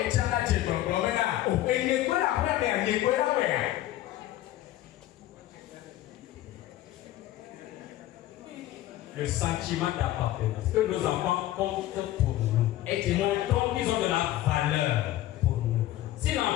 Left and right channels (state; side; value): quieter; right; 14.4 dB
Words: le sentiment d'appartenance. Que nos enfants comptent pour nous. Et qui montrent qu'ils ont de la valeur pour nous. Si